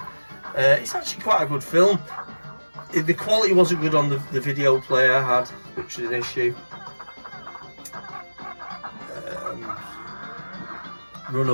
It's actually quite a good film. The quality wasn't good on the video player I had, which was an issue.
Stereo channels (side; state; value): both; inverted; correlation -1.00